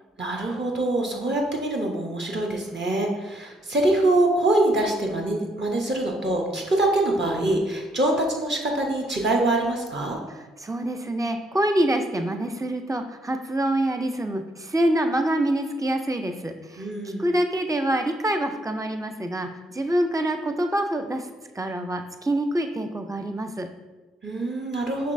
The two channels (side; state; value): both; normal; correlation 0.73